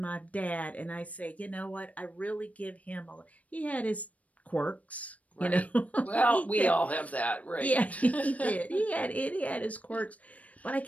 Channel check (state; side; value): late; right; 0.068 ms